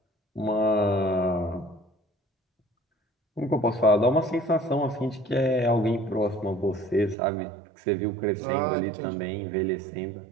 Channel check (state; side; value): drops out; left; at 7.2 s